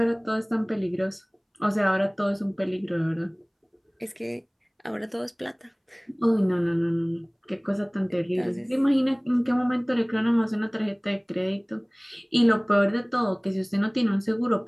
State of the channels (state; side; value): identical; both; correlation 1.00